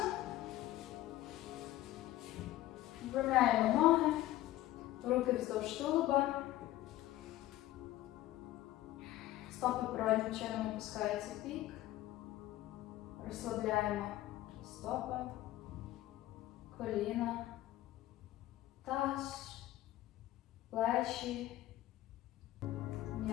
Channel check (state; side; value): quieter; right; 15.1 dB